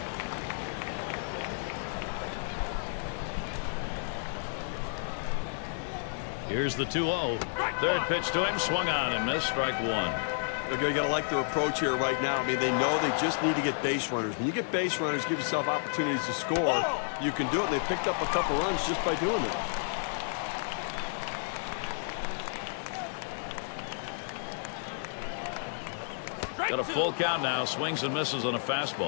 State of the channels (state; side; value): silent; right; digital silence